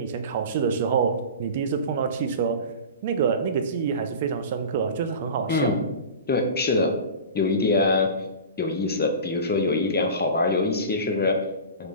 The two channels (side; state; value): both; inverted; correlation -0.33